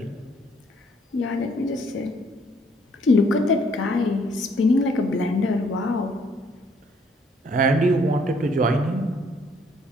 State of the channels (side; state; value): both; normal; correlation 0.65